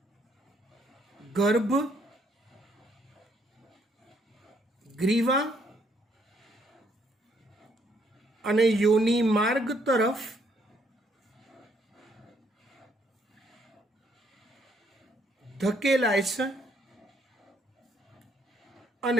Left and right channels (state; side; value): normal; both; correlation 0.70